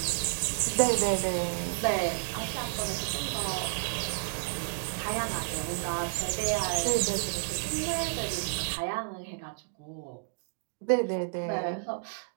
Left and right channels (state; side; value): silent; left; digital silence